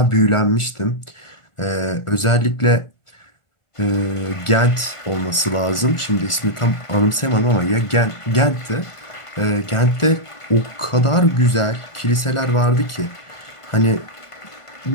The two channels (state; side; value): late; right; 1.4 ms